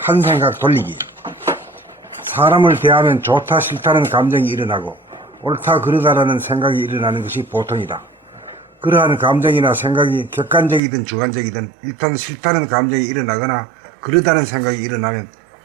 생각 돌리기. 사람을 대하면 좋다 싫다는 감정이 일어나고 옳다 그르다라는 생각이 일어나는 것이 보통이다. 그러한 감정이나 생각이 객관적이든 주관적이든 일단 싫다는 감정이 일어나거나 그르다는 생각이 일어나면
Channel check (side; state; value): left; drops out; at 10.8 s